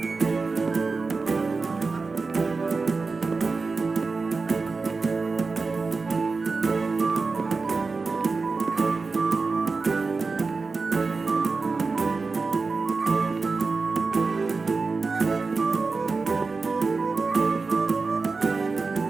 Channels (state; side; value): quieter; left; 4.2 dB